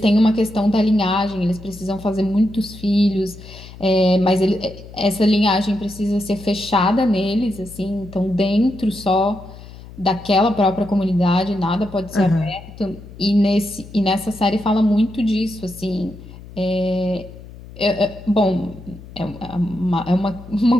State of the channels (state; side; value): noise; left; hum, 17 dB below the sound